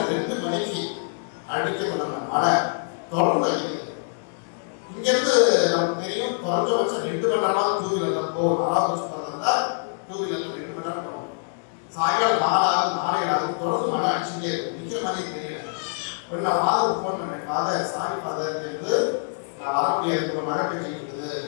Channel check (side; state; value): right; silent; digital silence